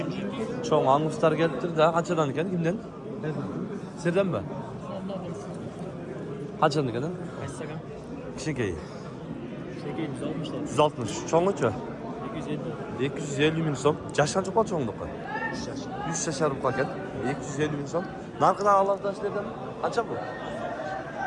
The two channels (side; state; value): both; identical; correlation 1.00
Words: Çoğun anguslar geliptir da qanchadan ekan kimden? Sizden mi? Qanchadan ekan? Kaçsakan? Kişikeyi. Şekeyi 160'lar. 160. Çoğunluçu? 250. 250 ming so'm. Jash qancha qoldi cho'nglikqa? 100 yashar ekan. 250 ming so'm. Narxini alohidalashlardan qancha bu?